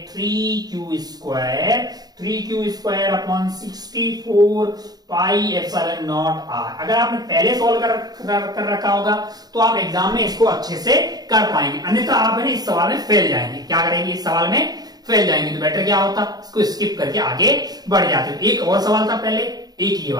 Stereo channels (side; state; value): left; late; 0.19 ms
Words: 3q square upon 64 pi epsilon not R. अगर आपने पहले सॉल्व कर रखा होगा तो आप एग्जाम में इसको अच्छे से कर पाएंगे, अन्यथा आप है ना इस सवाल में फेल जाएंगे। क्या करेंगे, इस सवाल में फेल जाएंगे। तो बेटर क्या होता, इसको स्किप करके आगे बढ़ जाते। एक और सवाल था पहले, एक ये